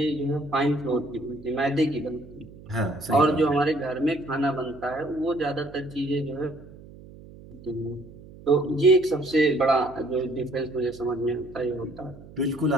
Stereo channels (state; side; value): noise; right; hum, 19 dB below the sound